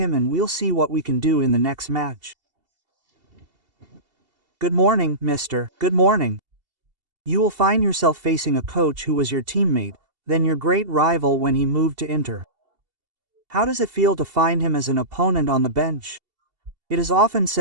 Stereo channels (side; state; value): left; late; 2.7 ms